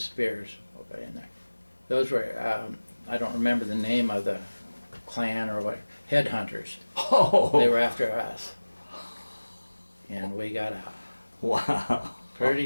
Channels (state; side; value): inverted; both; correlation -1.00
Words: spears were in there. Those were, I don't remember the name of the clan or what, headhunters. Oh. They were after us. And we got out. Wow. Pretty